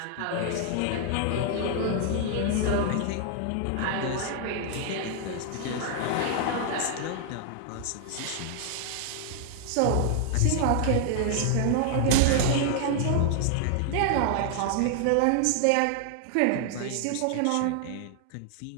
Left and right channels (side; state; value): both; different; correlation 0.00